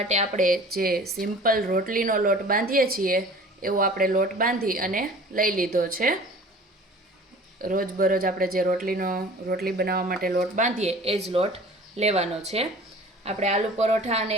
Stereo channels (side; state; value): both; normal; correlation 0.44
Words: આપણે જે સિમ્પલ રોટલીનો લોટ બાંધીએ છીએ એવો આપણે લોટ બાંધી અને લઈ લીધો છે. રોજબરોજ આપણે જે રોટલી બનાવવા માટે લોટ બાંધીએ એ જ લોટ લેવાનો છે. આપણે આલુ પરોઠા અને